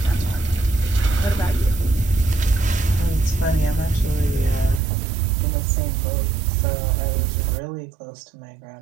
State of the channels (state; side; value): drops out; left; at 4.8 s